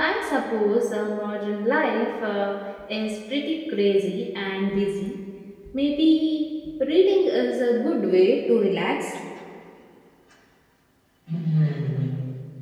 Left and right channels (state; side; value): identical; both; correlation 1.00